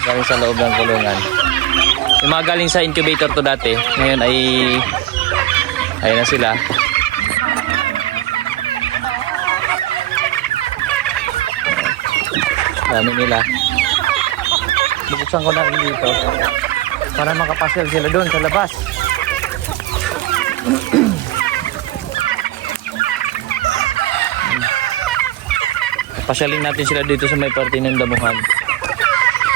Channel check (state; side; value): quieter; left; 16.5 dB